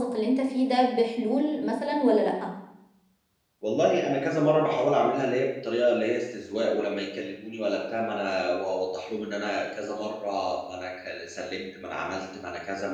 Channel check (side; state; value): both; identical; correlation 1.00